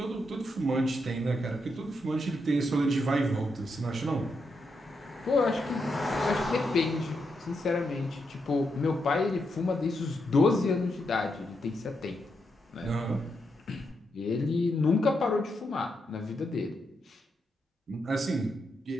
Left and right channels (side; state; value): both; normal; correlation 0.82